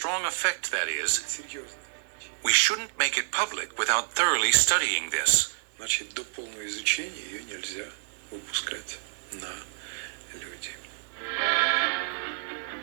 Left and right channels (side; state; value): left; silent; 59 dB below the other